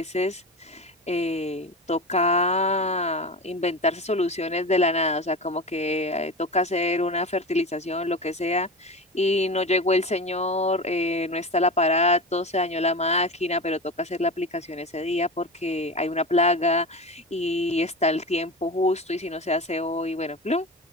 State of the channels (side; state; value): both; normal; correlation 0.26